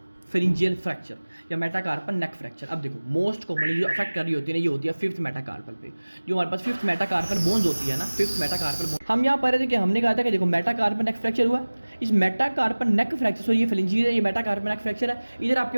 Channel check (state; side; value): inverted; both; correlation -1.00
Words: फेरिंजियल फ्रैक्चर या मेटाकार्पल नेक फ्रैक्चर। अब देखो मोस्ट कॉमनली जो अफेक्ट कर रही होती है ना ये होती है फिफ्थ मेटाकार्पल पे, जो हमारे पास फिफ्थ मेटाकार्पल बोन्स होती है ना, फिफ्थ मेटाकार्पल बोन। हम यहाँ पर थे कि हमने कहा था कि देखो मेटाकार्पल नेक फ्रैक्चर हुआ, इस मेटाकार्पल नेक फ्रैक्चर, सो ये फेरिंजियल है, ये मेटाकार्पल नेक फ्रैक्चर है, इधर आपके